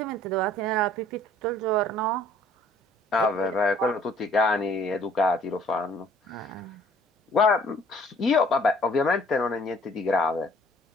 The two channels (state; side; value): normal; both; correlation 0.57